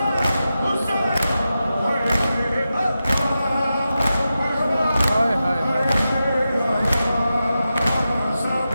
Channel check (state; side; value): inverted; both; correlation -0.91